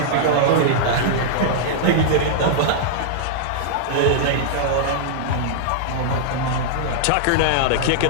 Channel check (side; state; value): both; different; correlation -0.02